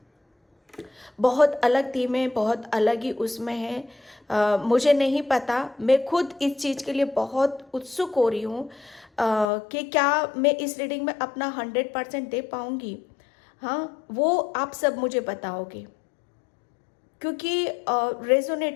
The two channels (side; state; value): right; drops out; at 9.5 s